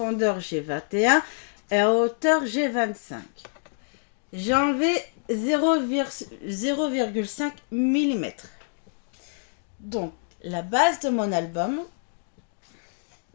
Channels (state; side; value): silent; right; digital silence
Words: j'ai 21. Et en hauteur, j'ai 25. J'ai enlevé 0,5 mm. Donc, la base de mon album.